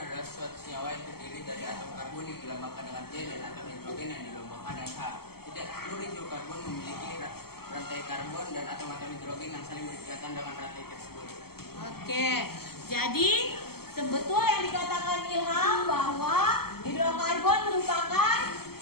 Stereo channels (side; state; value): right; late; 0.95 ms